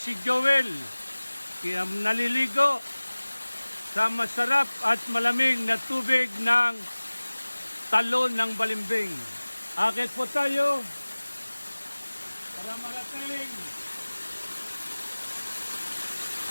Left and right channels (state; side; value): inverted; both; correlation -1.00